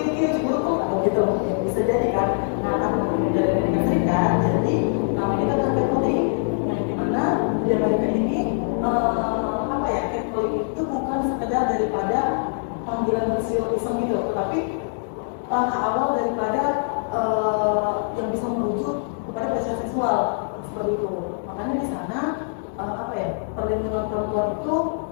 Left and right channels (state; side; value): silent; right; 63 dB below the other